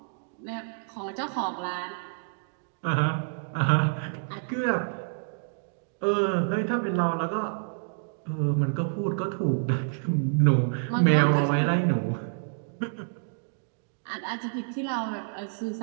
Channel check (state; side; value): silent; left; digital silence